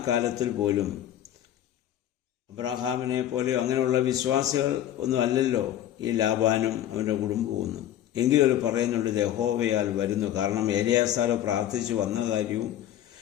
കാലത്തിൽ പോലും അബ്രഹാമിനെ പോലെ അങ്ങനെയുള്ള വിശ്വാസികൾ ഒന്നും അല്ലല്ലോ ഈ ലാബാനും അവൻ്റെ കുടുംബവും. എങ്കിലും അവർ പറയുന്നുണ്ട് യഹോവയാൽ വരുന്നു. കാരണം എലിയാസാർ പ്രാർത്ഥിച്ചു വന്ന കാര്യവും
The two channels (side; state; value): right; quieter; 11.7 dB